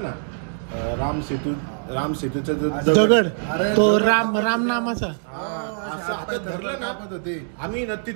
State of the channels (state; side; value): silent; left; digital silence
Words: ना राम सेतूचा जो दगड, तो राम नामाचा, असं हातात धरलं ना होते. आम्ही ना